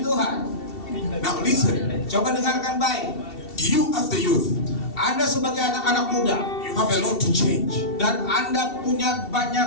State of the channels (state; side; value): late; right; 2.7 ms